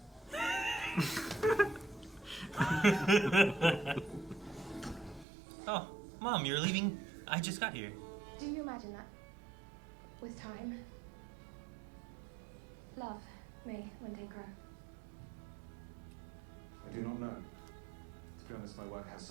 Oh, Mom, you're leaving? I just got here. Do you imagine that? With time, love may one day grow. I do not know. To be honest, my work has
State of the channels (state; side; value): drops out; left; at 5.2 s